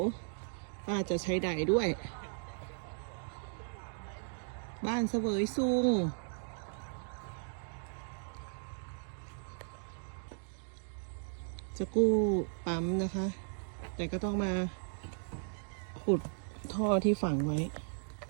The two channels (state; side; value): silent; left; digital silence